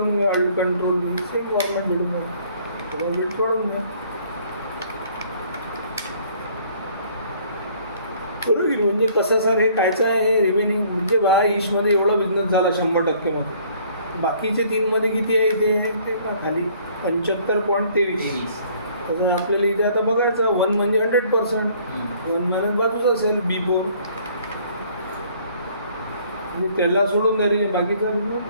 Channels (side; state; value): both; inverted; correlation -0.59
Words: घ्या. अल्ट कंट्रोल सेम फॉर्मॅट भेटून घ्या. थोडा वेट वाढवून घ्या. बरोबर. म्हणजे कसं सर हे कायचं आहे हे रिमेनिंग म्हणजे बा ईशमध्ये एवढा बिझनेस झाला 100% मध्ये. बाकीचे 3मध्ये किती आहे इथे ते खाली 75.23. तसं आपल्याला इथे आता बघायचं 1 म्हणजे 100%. 1 मायनस बाजूच असेल B4. म्हणजे त्याला सोडून द्या बाकीचा